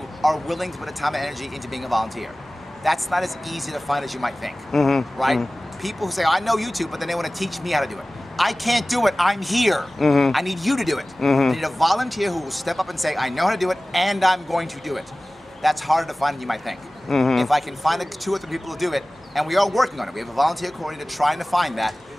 are willing to put the time and energy into being a volunteer. That's not as easy to find as you might think, right? People who say, I know YouTube, but then they want to teach me how to do it. I can't do it, I'm here. I need you to do it. I need a volunteer who will step up and say, I know how to do it, and I'm going to do it. That's harder to find than you might think. If I can find 2 or 3 people to do it, and we are working on it. We have a volunteer coordinator trying to find that.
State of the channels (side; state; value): both; normal; correlation 0.97